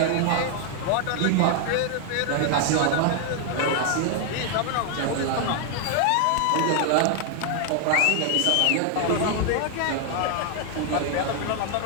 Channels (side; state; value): both; different; correlation 0.00